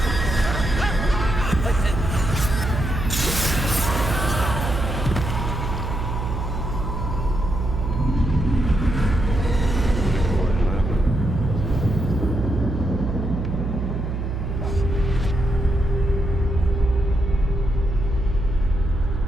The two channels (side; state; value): right; noise; hum, 3 dB below the sound